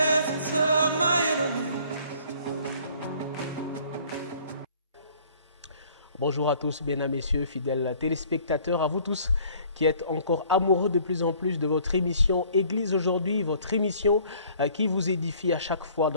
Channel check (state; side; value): inverted; both; correlation -0.56